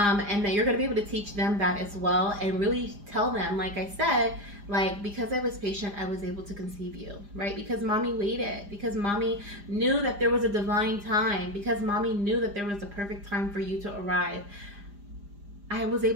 that you're going to be able to teach them that as well, and really tell them, like I said, like, because I was patient, I was able to conceive you, right? Because mommy waited, because mommy knew that there was a divine time, because mommy knew that there was a perfect time for you to arrive. I was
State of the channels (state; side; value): late; left; 4.9 ms